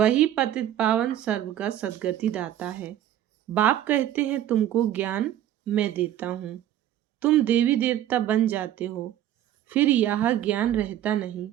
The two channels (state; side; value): quieter; left; 11.9 dB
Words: पतित पावन सर्व का सद्गति दाता है। बाप कहते हैं तुमको ज्ञान मैं देता हूँ, तुम देवी देवता बन जाते हो, फिर यह ज्ञान रहता नहीं।